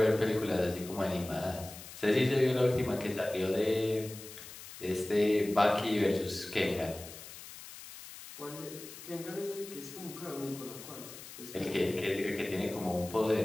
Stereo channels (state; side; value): noise; left; hiss, 14 dB below the sound